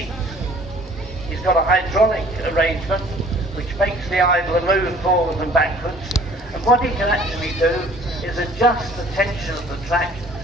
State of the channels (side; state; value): both; normal; correlation 0.53